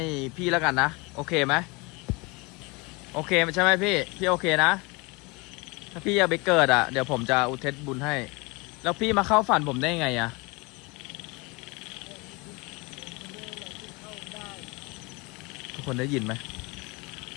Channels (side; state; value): right; quieter; 26.8 dB